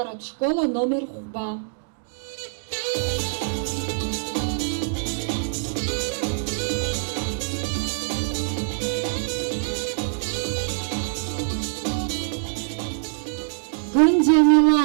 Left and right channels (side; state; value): left; silent; digital silence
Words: школ аномер хәба.